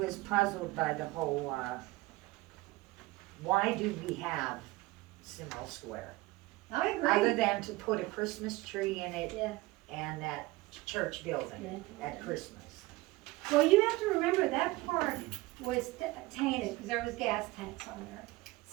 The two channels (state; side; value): quieter; left; 20.3 dB